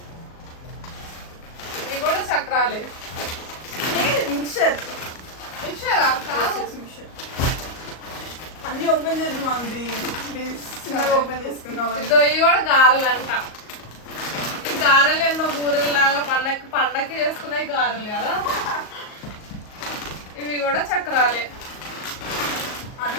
ఇవి కూడా చక్రాలే. మిక్చర్. మిక్చరా? కాదు. అన్ని ఓపెన్ చేసి మాది చిన్నగా ఓపెన్ చేసుకున్నాం. ఇదో ఇవి కూడా గారెలు అంట. ఈ గారెలు ఏందో బూరెలు లాగా పండక్కి చేసుకునే గారెలు కదా. ఇవి కూడా చక్రాలే.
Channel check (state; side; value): late; right; 38 ms